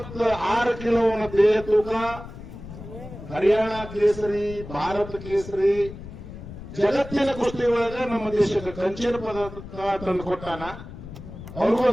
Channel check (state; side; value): noise; left; rumble, 13 dB below the sound